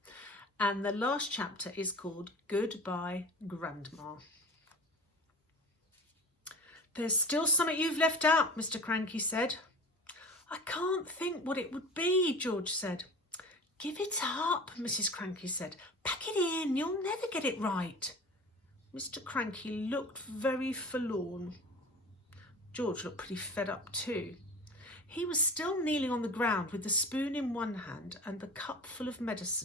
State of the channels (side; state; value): both; normal; correlation 0.37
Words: And the last chapter is called Goodbye Grandma. There's still something you've left out, Mr. Cranky said. I can't think what it would be, George said. Give it up, Mrs. Cranky said. Pack it in, you'll never get it right. Mr. Cranky looked very forlorn. George looked pretty fed up too. He was still kneeling on the ground with the spoon in one hand and the cup full of